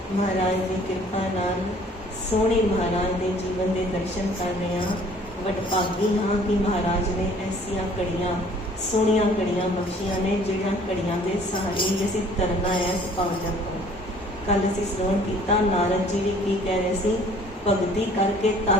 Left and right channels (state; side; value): normal; both; correlation 0.55